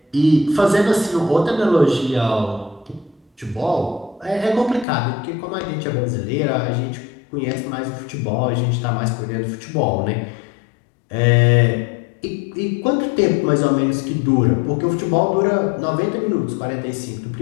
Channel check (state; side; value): drops out; right; at 4.9 s